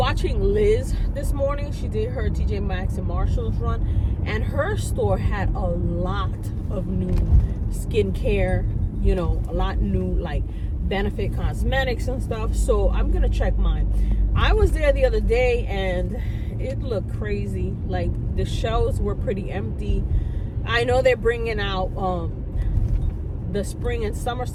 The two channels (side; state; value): both; identical; correlation 1.00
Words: Liz this morning. She did her TJ Maxx and Marshalls run, and her store had a lot of new skincare, you know, a lot new like Benefit cosmetics and stuff. So I'm gonna check mine. I was there the other day and it looked crazy. Like, the shelves were pretty empty. I know they're bringing out the spring and summer